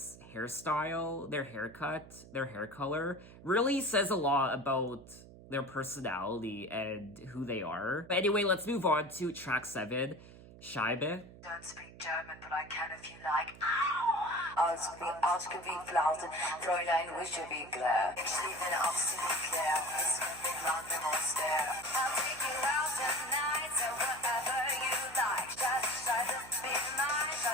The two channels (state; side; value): noise; right; hum, 19 dB below the sound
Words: hairstyle, their haircut, their hair color really says a lot about their personality and who they are. But anyway, let's move on to track 7. Scheibe. Don't speak German, but I can if you like. Ausgewickelt, Fräulein Wischewickler. Ich liebe Ausgewickler, es wird den Land im Oster. I'll take you out tonight, so whatever you like. Just be nice,